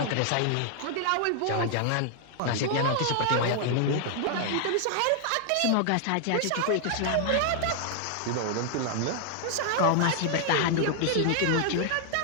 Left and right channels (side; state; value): both; different; correlation 0.00